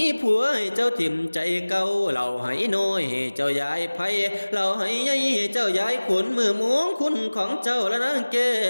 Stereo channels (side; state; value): both; inverted; correlation -1.00